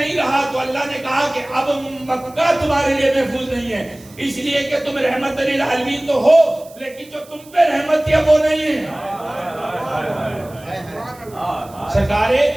رہا تو اللہ نے کہا کہ اب مکہ تمہارے لیے محفوظ نہیں ہے، اس لیے کہ تم رحمت للعالمین تو ہو لیکن جو تم پہ رحمت تھی وہ نہیں ہے. سرکار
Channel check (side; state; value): right; noise; hiss, 24 dB below the sound